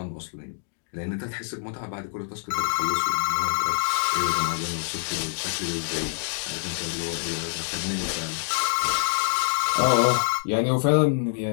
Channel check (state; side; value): silent; right; digital silence